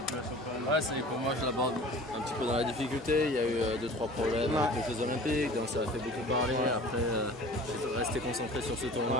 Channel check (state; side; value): normal; both; correlation 0.43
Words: US Open? Ouais, pour moi je l'aborde un petit peu dans la difficulté. Il y a eu 2-3 problèmes avec les Jeux Olympiques, donc ça a fait beaucoup parler. Après, je suis resté concentré sur ce